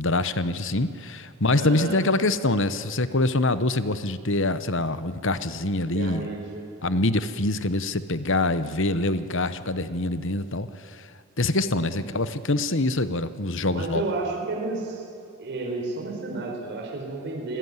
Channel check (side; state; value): both; normal; correlation 0.29